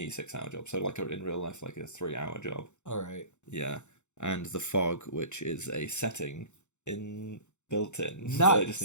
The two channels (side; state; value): right; late; 0.83 ms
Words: 6-hour job. So like in real life, like a 3-hour job. All right. Yeah. And the fog, which is a setting built in. Nice. So I just